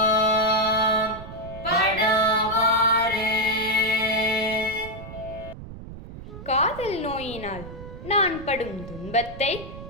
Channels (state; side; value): noise; right; rumble, 13 dB below the sound